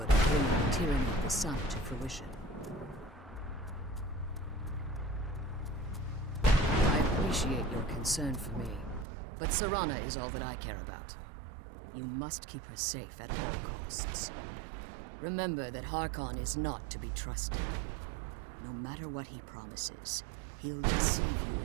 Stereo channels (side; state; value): left; drops out; at 9.1 s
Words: of bringing the tyranny of the sun to fruition. I appreciate your concern for me, but Serana is all that I care about. You must keep her safe at all costs. Remember that Harkon is not to be trusted. No matter what he promises, he'll deceive you